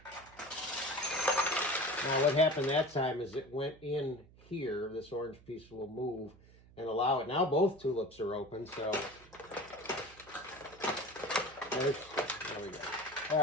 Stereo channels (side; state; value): right; noise; hum, 24 dB below the sound